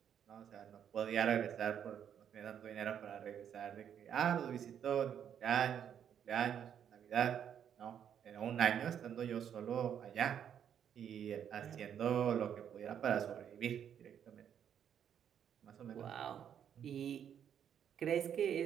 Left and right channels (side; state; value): left; quieter; 8.9 dB